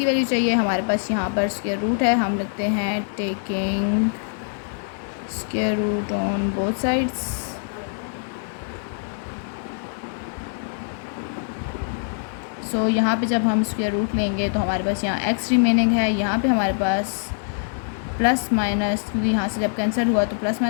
वैल्यू चाहिए, हमारे पास यहाँ पर स्क्वायर रूट है, हम लिखते हैं taking square root on both sides. So यहाँ पे जब हम स्क्वायर रूट लेंगे तो हमारे पास यहाँ x रिमेनिंग है, यहाँ पे हमारे पास प्लस माइनस, क्योंकि यहाँ से जब कैंसिल हुआ तो प्लस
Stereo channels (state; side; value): silent; right; 63 dB below the other